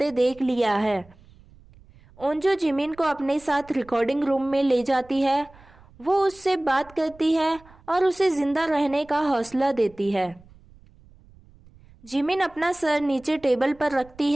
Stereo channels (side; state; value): right; noise; rumble, 25 dB below the sound